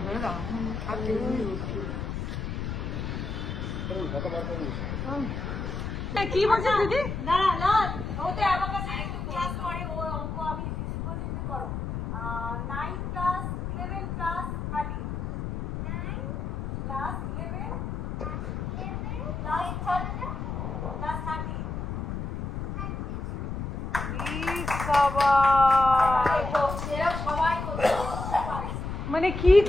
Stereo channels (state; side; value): noise; left; rumble, 4 dB below the sound